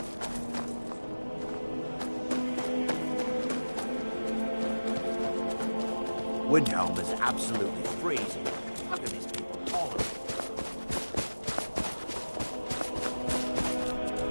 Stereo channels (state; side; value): inverted; both; correlation -1.00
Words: Windhelm is absolutely freezing. How can these people tolerate it?